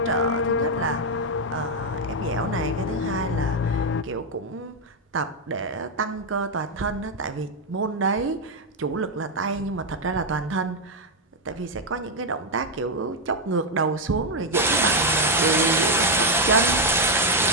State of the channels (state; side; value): normal; both; correlation 0.03